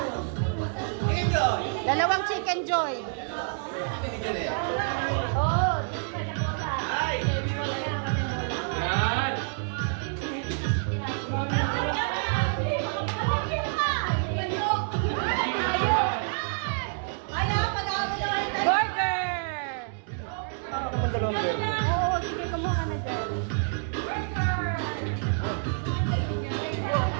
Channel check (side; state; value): left; silent; digital silence